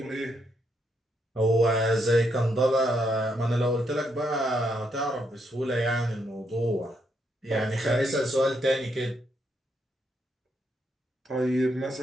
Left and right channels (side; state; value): both; normal; correlation 0.77